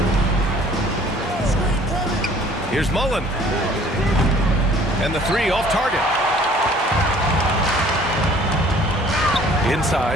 Here's Mullen. And the three off target.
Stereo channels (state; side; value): normal; both; correlation 0.54